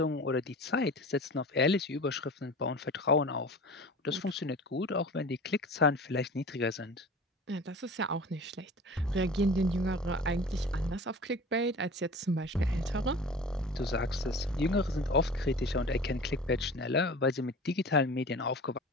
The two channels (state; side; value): normal; both; correlation 0.39